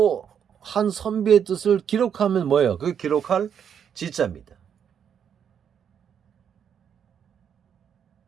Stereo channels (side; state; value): left; quieter; 8.1 dB